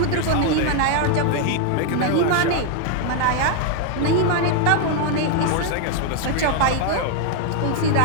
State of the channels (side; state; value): both; different; correlation 0.01